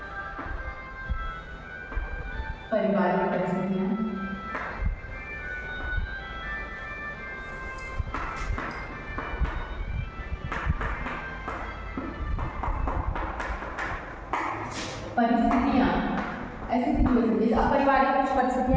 पारिवारिक परिस्थितियां, ऐसी सिचुएशन, जैसे अब पारिवारिक कुछ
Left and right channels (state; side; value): identical; both; correlation 1.00